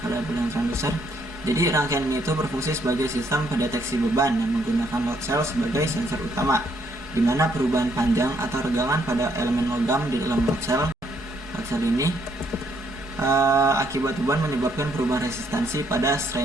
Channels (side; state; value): both; normal; correlation 0.70